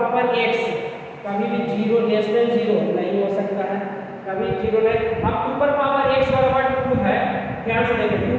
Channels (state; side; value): identical; both; correlation 1.00